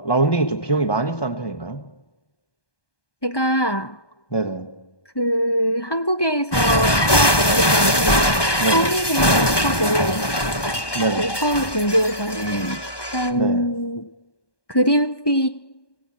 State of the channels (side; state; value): right; late; 1.2 ms